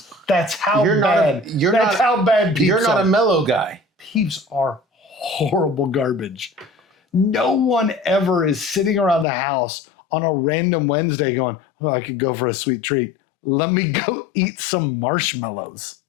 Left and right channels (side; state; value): right; drops out; at 9.2 s